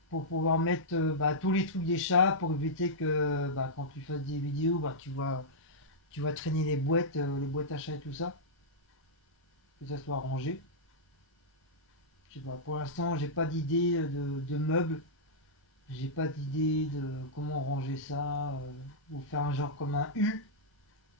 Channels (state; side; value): normal; both; correlation -0.11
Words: pour pouvoir mettre tous les trucs des chats, pour éviter que quand tu fasses des vidéos, tu vas traîner les boîtes achats et tout ça, que ça soit rangé. Je sais pas, pour l'instant, j'ai pas d'idée de meubles, j'ai pas d'idée de comment ranger ça, ou faire un genre comme un U,